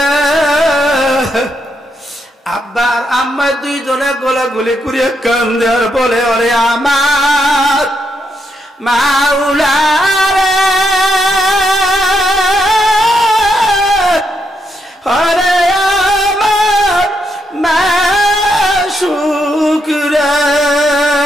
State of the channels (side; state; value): both; normal; correlation 0.79